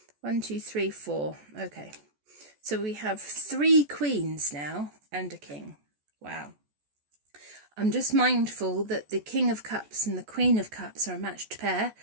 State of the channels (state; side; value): late; left; 14 ms